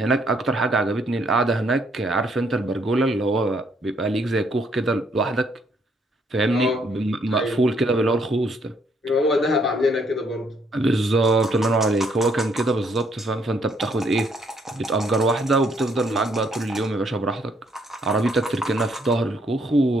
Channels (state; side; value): normal; both; correlation 0.69